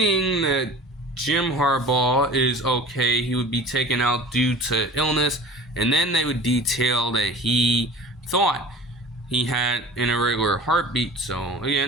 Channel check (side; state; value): both; normal; correlation 0.41